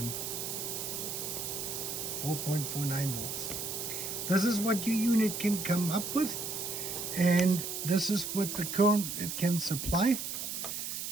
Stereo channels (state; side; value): noise; right; hiss, 4 dB below the sound